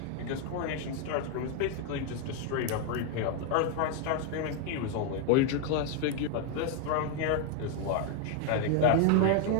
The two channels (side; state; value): both; different; correlation 0.01